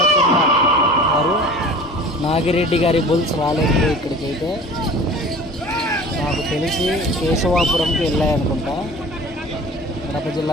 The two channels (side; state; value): both; normal; correlation 0.42